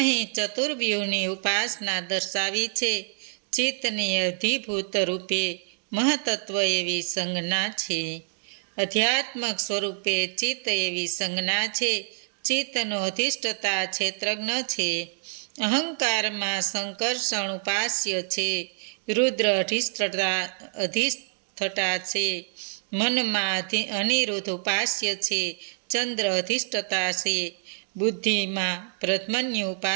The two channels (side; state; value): left; silent; digital silence